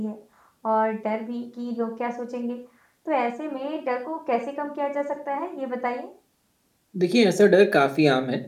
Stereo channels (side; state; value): both; identical; correlation 1.00